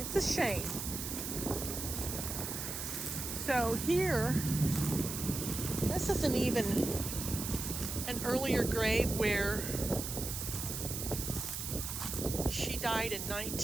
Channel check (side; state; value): right; noise; hiss, 5 dB below the sound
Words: a shame. So here, this isn't even an earlier grave where she died in